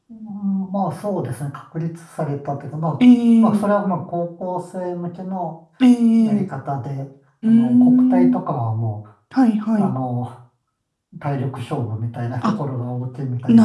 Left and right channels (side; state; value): both; identical; correlation 1.00